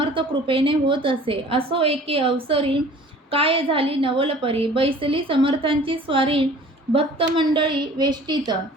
कृपेने होत असे. असो एके अवसरी काय झाली नवलपरी. बैसली समर्थांची स्वारी भक्तमंडळी वेष्टीत.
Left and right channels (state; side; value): normal; both; correlation 0.48